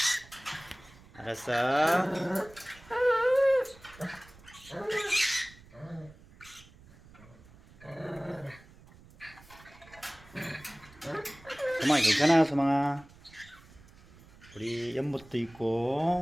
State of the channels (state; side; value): noise; right; rumble, 24 dB below the sound